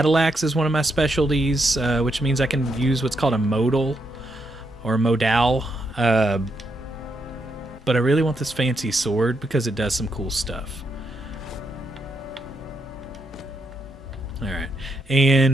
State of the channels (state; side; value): normal; both; correlation 0.79